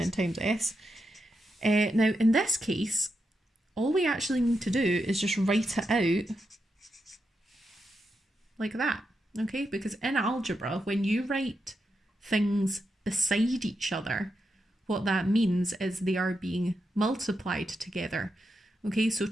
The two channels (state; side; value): normal; both; correlation 0.85